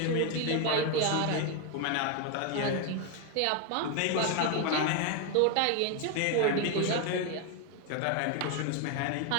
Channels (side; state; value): both; different; correlation 0.01